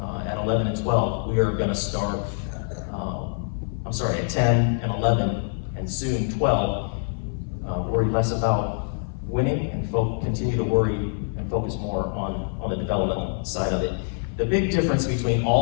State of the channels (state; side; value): silent; right; 56 dB below the other